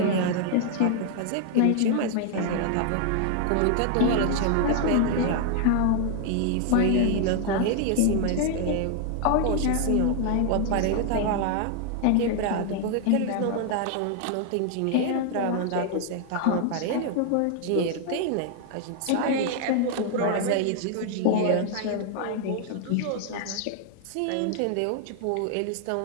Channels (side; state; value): both; different; correlation 0.00